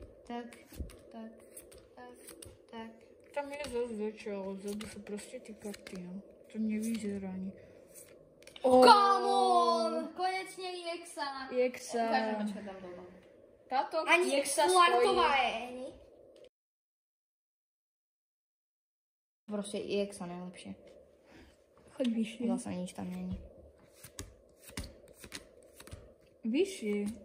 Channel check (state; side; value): identical; both; correlation 1.00